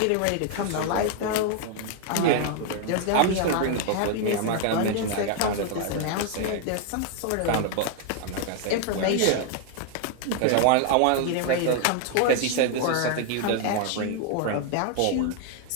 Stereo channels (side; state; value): both; different; correlation 0.00